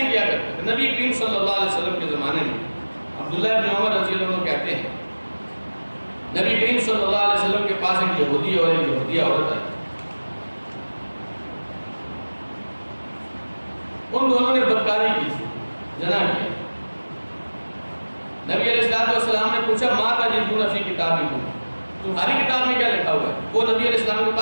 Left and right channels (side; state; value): both; inverted; correlation -1.00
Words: ہی کیا کرتے تھے. نبی کریم صلی اللہ علیہ وسلم کے زمانے میں عبداللہ ابن عمر رضی اللہ عنہ کہتے ہیں نبی کریم صلی اللہ علیہ وسلم کے پاس ایک یہودی اور ایک یہودیہ عورت آئی. ان دونوں نے بدکاری کی تھی، زنا کیا. نبی علیہ السلام نے پوچھا ماں تجدون فی کتابکم، تمہاری کتاب میں کیا لکھا ہوا ہے؟ وہ نبی علیہ السلام کے